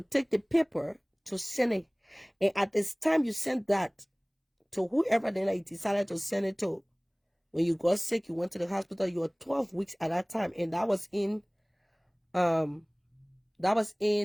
the paper to send it. And at this time you sent that to whoever then you decided to send it to. When you got sick, you went to the hospital, you were 12 weeks at that time. And that was in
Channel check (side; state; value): both; identical; correlation 1.00